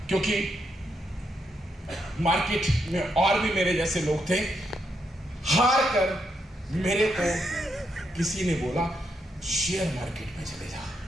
क्योंकि मार्केट में और भी मेरे जैसे लोग थे। हार कर मेरे को किसी ने बोला शेयर मार्केट में चले जा।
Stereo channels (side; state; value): both; normal; correlation 0.80